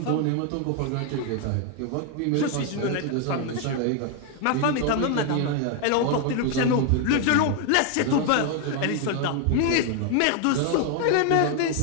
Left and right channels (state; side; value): different; both; correlation 0.01